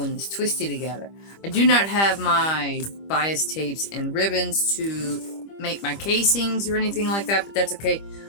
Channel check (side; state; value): right; late; 25 ms